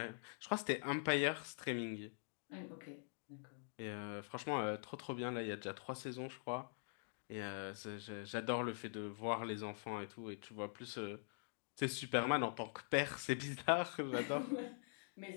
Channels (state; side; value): silent; right; digital silence